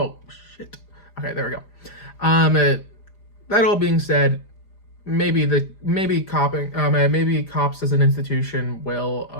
shit. Okay, there we go. That all being said, maybe cops as an institution will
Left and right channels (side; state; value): right; late; 5.0 ms